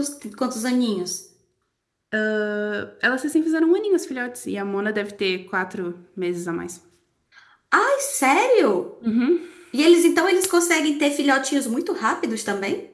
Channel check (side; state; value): both; identical; correlation 1.00